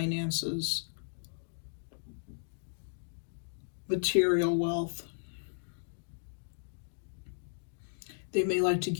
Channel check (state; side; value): silent; right; digital silence